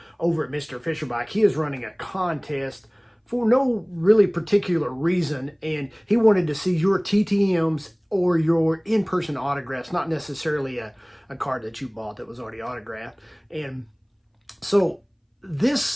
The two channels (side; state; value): both; identical; correlation 1.00